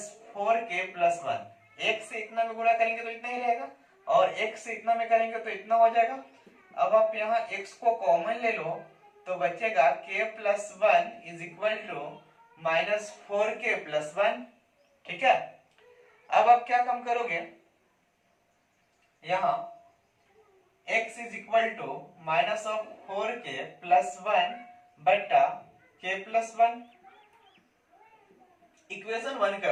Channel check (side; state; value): both; identical; correlation 1.00